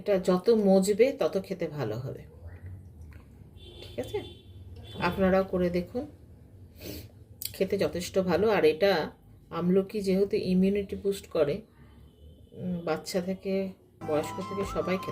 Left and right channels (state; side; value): identical; both; correlation 1.00